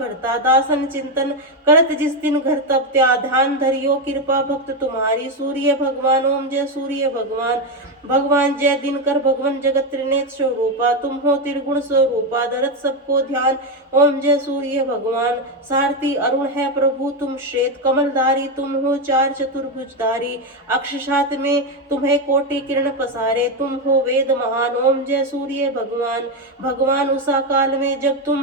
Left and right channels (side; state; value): both; normal; correlation 0.09